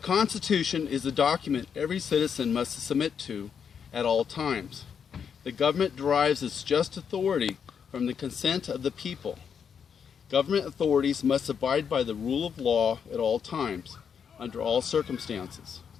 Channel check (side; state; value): right; quieter; 7.2 dB